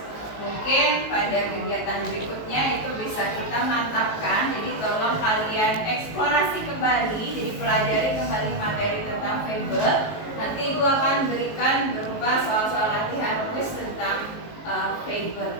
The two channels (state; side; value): late; right; 19 ms